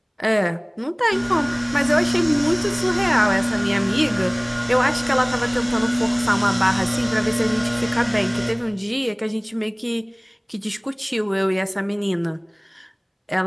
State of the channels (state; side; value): identical; both; correlation 1.00